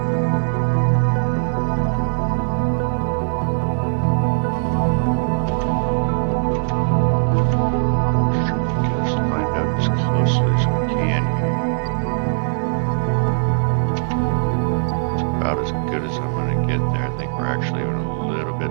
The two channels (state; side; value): silent; left; 66 dB below the other